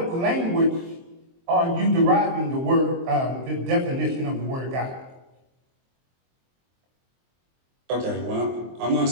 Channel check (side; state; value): left; late; 23 ms